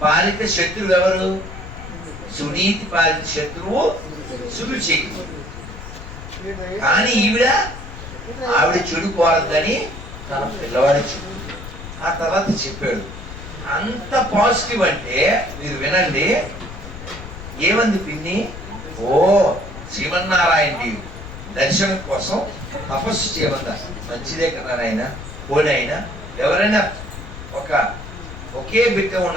పాలిత శత్రువు ఎవరు? సునీతి పాలిత శత్రువు సురుచి. కానీ ఆవిడ చెడు కోరద్దని తన పిల్లవాడి చెప్పు. ఆ తర్వాత చెప్పాడు. అంత పాజిటివ్ అంటే మీరు వినండి, ఏమంది పిన్ని, ఓ శ్రీమన్నారాయణ దర్శనం కోసం తపస్సు చేయమందా, మంచిదే కదా నాయన, పోనీ అయినా ఎవరైనా ఒకే బిడ్డ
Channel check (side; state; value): left; noise; rumble, 12 dB below the sound